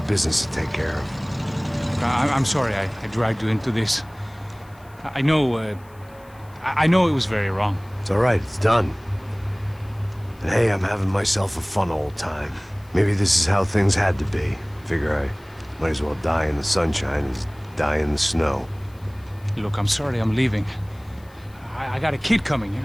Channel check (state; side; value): noise; left; hiss, 29 dB below the sound